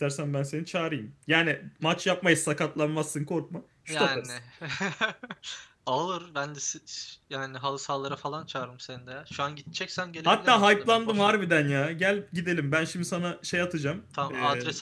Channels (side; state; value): both; identical; correlation 1.00